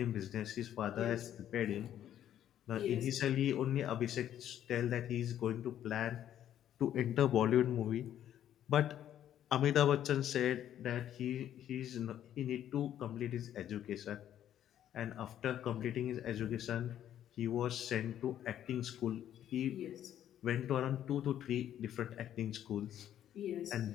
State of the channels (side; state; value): right; quieter; 11.0 dB